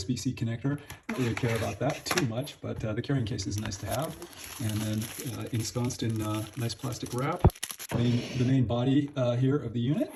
connector. I don't really care about that too much, but the carrying case is nice to have. And then ensconced in nice plastic wrap. The main body here of the unit.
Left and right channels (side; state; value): both; identical; correlation 1.00